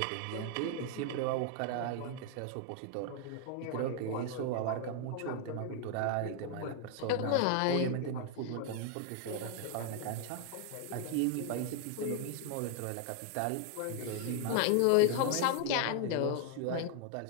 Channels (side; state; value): both; different; correlation 0.00